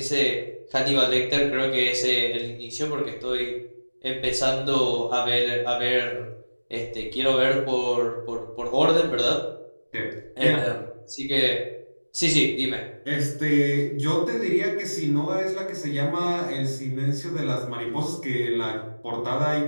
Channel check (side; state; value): both; inverted; correlation -1.00